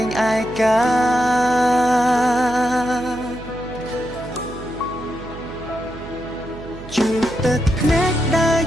ងឯកាជួបទឹកភ្នែកដើរ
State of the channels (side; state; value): right; noise; hum, 14 dB below the sound